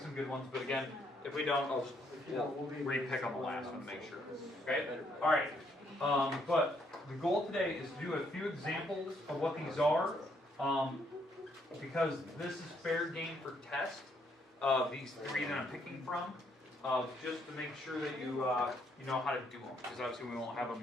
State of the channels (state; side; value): normal; both; correlation 0.71